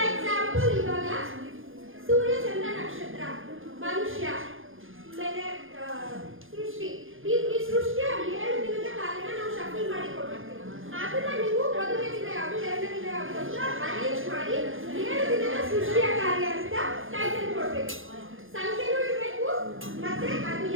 ಎಕ್ಸಾಂಪಲ್ ಇವಾಗ ಸೂರ್ಯ ಚಂದ್ರ ನಕ್ಷತ್ರ ಮನುಷ್ಯ ಮೇಲೆ ಸೃಷ್ಟಿ ಈ ಸೃಷ್ಟಿಯ 7 ದಿನದ ಕಾರ್ಯನ ನಾವು ಶಫಲ್ ಮಾಡಿ ಕೊಡ್ತೀವಿ. ಅದನ್ನ ನೀವು ಮೊದಲನೇ ದಿನ ಯಾವುದು ಎರಡನೇ ದಿನ ಯಾವುದು ಅಂತ ಅರೇಂಜ್ ಮಾಡಿ 7 ದಿನದ ಸೃಷ್ಟಿಯ ಕಾರ್ಯ ಅಂತ ಟೈಟಲ್ ಕೊಡ್ಬೇಕು. ಸಂಖ್ಯೆನೂ ಇರಬೇಕು ಮತ್ತೆ ಅದು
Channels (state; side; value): late; left; 0.59 ms